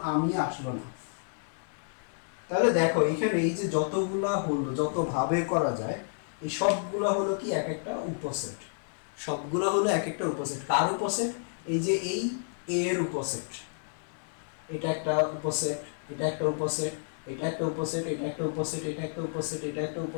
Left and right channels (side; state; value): right; silent; 56 dB below the other